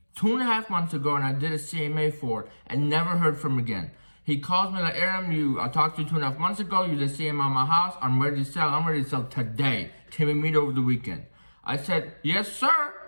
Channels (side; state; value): both; inverted; correlation -1.00